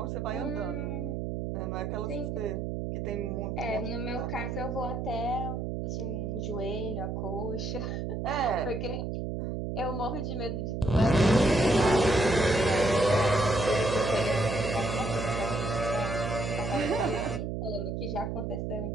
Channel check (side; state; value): right; noise; hum, 3 dB below the sound